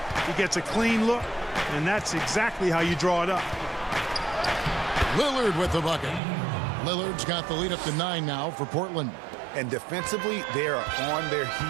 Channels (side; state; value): left; drops out; at 6.2 s